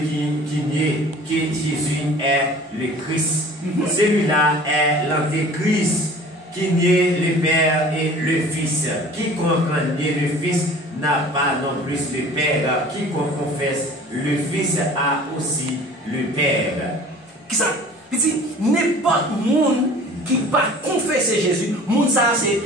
qui nie que Jésus est le Christ. Celui-là est l'antéchrist qui nie le Père et le Fils. Quiconque nie le Fils n'a pas non plus le Père. Quiconque confesse le Fils a aussi le Père. Qui ça? Il dit, n'importe monde qui va confesser Jésus, monde ça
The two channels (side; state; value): both; normal; correlation 0.45